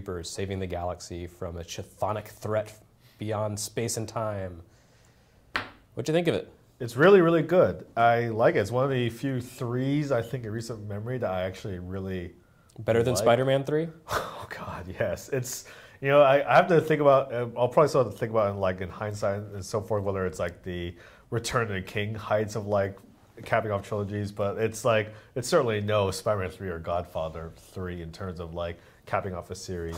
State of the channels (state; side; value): identical; both; correlation 1.00